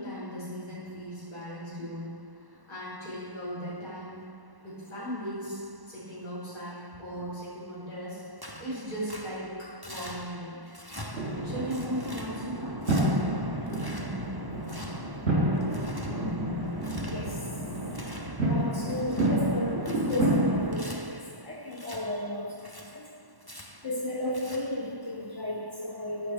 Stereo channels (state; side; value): late; left; 1.1 ms